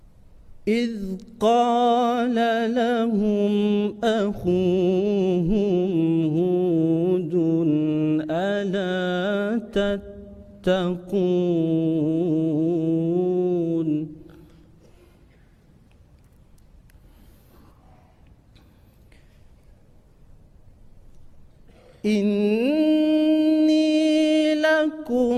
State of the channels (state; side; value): identical; both; correlation 1.00